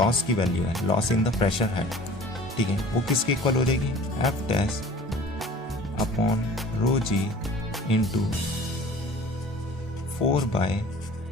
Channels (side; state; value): both; normal; correlation 0.45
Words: की वैल्यू है, loss in the pressure head, ठीक है, वो किसके इक्वल हो जाएगी, F dash upon rho ji into 4 by